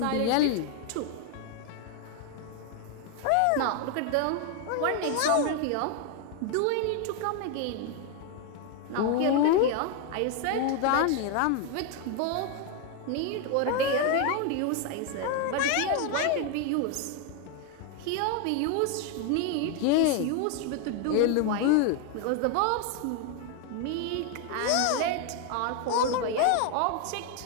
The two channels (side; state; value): both; different; correlation 0.01